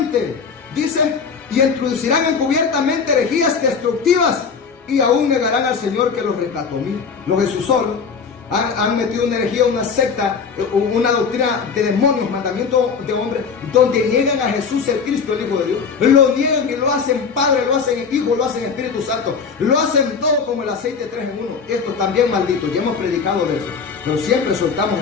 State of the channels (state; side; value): quieter; right; 5.7 dB